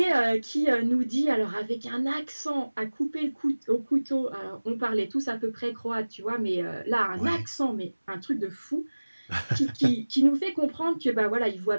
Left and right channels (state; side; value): inverted; both; correlation -1.00